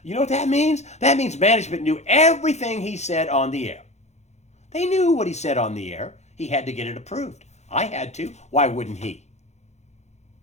You know what that means? That means management knew everything he said on the air. They knew what he said on the air. He had to get it approved. I had to. Why wouldn't he?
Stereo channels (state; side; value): late; right; 0.33 ms